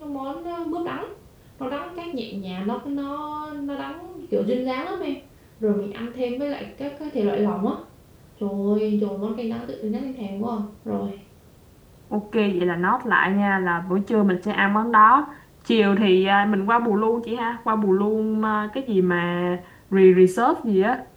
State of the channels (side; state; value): both; identical; correlation 1.00